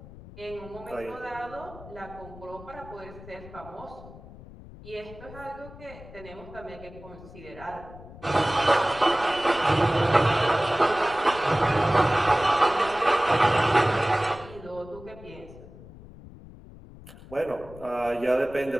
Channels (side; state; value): left; noise; rumble, 18 dB below the sound